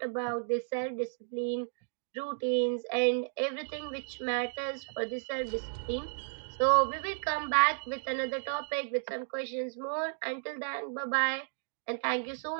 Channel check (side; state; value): left; silent; digital silence